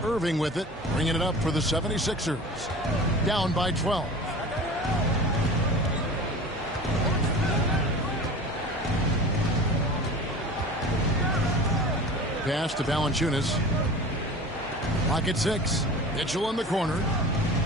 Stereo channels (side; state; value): both; normal; correlation 0.37